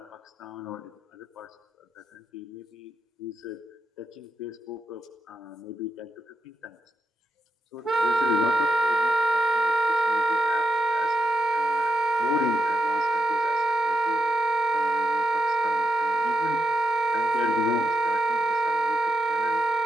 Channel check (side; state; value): both; normal; correlation 0.87